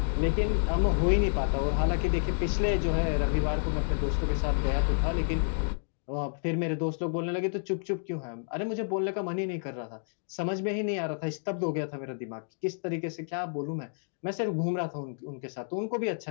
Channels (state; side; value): silent; right; digital silence